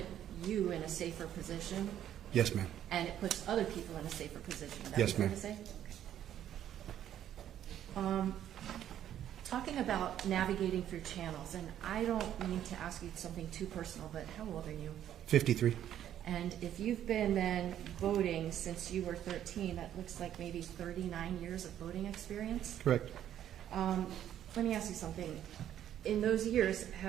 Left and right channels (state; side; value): quieter; left; 10.9 dB